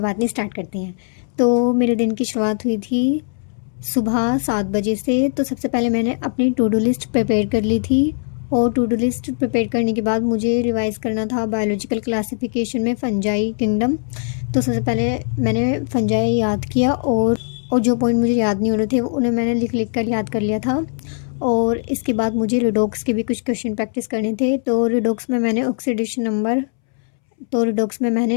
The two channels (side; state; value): right; silent; 66 dB below the other